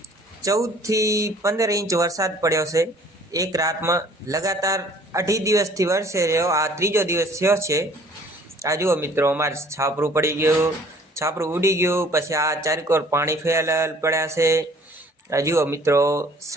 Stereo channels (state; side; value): normal; both; correlation 0.55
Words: 14 થી 15 ઇંચ વરસાદ પડ્યો છે। એક રાતમાં લગાતાર 2.5 દિવસથી વરસે રહ્યો। આ ત્રીજો દિવસ થયો છે। આ જુઓ મિત્રો, અમારે છાપરું પડી ગયું, છાપરું ઉડી ગયું, પછી આ ચારેકોર પાણી ફેલેલ પડ્યા છે। આ જુઓ મિત્રો,